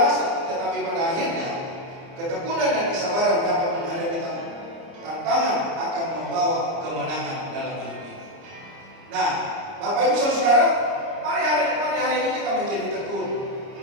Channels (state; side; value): late; left; 30 ms